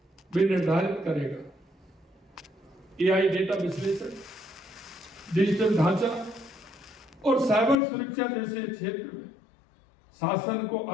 भी निर्धारित करेगा। एआई डेटा विश्लेषण, डिजिटल ढांचा और साइबर सुरक्षा जैसे क्षेत्र में शासन को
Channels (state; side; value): drops out; right; at 7.8 s